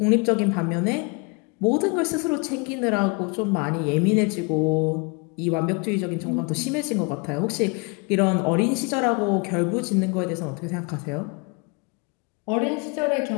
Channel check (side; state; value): right; quieter; 31.2 dB